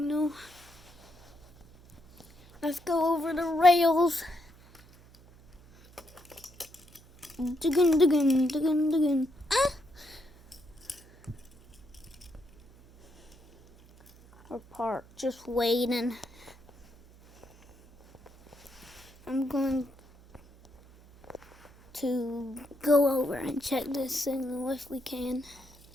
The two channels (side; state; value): right; noise; hum, 25 dB below the sound